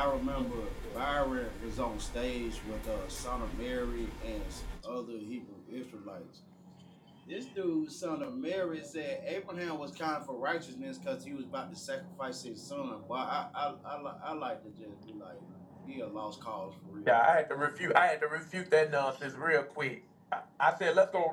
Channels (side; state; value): both; identical; correlation 1.00